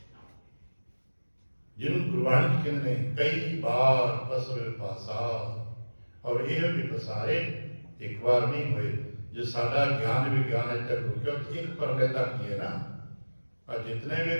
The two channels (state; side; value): inverted; both; correlation -1.00